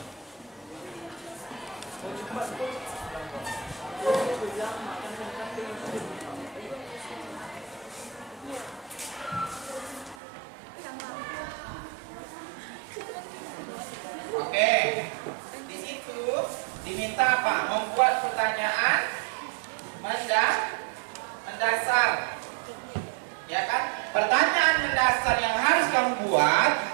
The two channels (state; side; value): drops out; left; at 10.2 s